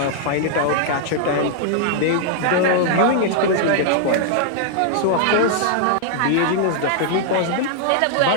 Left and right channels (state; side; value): different; both; correlation 0.00